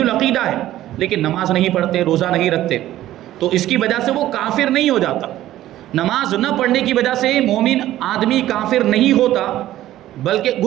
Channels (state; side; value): quieter; left; 14.0 dB